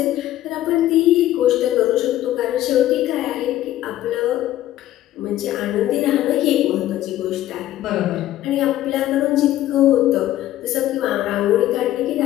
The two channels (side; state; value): right; quieter; 13.8 dB